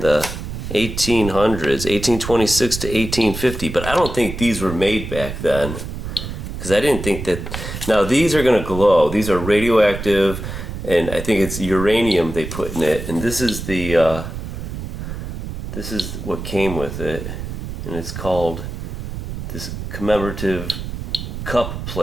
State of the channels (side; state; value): right; noise; rumble, 7 dB below the sound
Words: 1800s, 1826 to 1850, but I don't think these were made back then, because I didn't think that. Now these are going to glow. These are radioactive, and I think it's uranium they put in it, and this is the this is what came with it, and it's called this commemorative cup